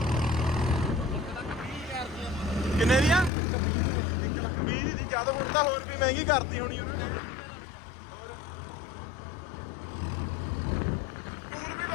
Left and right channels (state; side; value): drops out; right; at 3.3 s